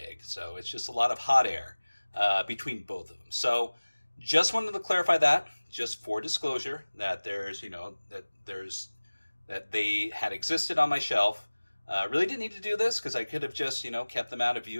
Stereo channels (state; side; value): inverted; both; correlation -1.00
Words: So it's just a lot of hot air between both of them. So just wanted to clarify that, just for disclosure, that there's, that they had existed on my shelf. Really didn't need to do this because I could have just, kept them out of